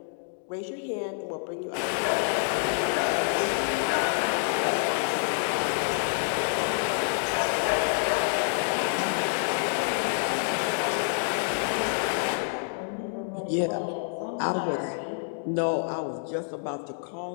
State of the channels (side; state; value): right; silent; digital silence